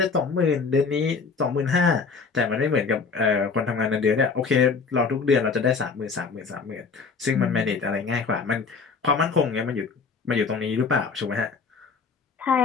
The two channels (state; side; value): quieter; right; 5.1 dB